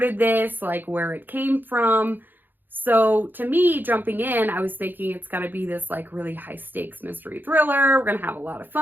this, like, where it came from. So, to me, jumping in, I was thinking it's going to be this, like, really high-stakes mystery thriller. We're going to have a lot of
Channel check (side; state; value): left; late; 0.090 ms